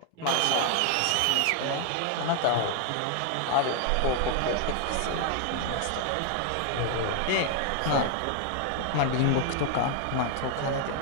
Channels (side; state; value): both; different; correlation 0.00